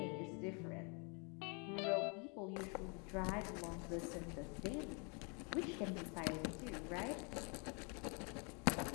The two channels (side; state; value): right; quieter; 34.4 dB